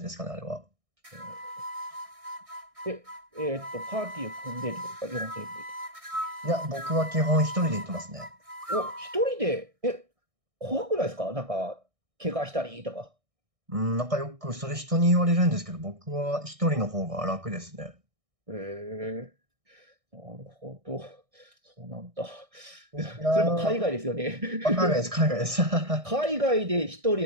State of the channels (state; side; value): late; left; 1.6 ms